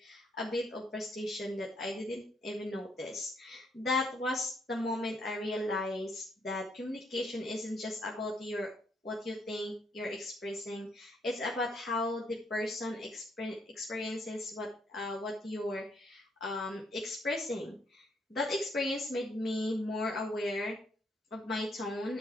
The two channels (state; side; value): normal; both; correlation 0.72